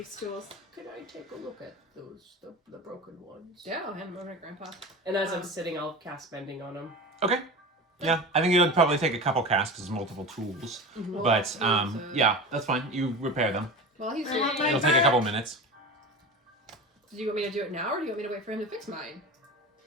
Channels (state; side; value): normal; both; correlation 0.30